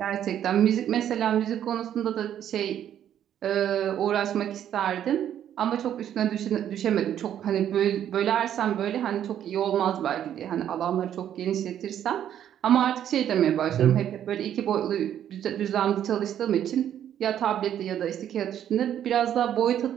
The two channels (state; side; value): quieter; left; 10.3 dB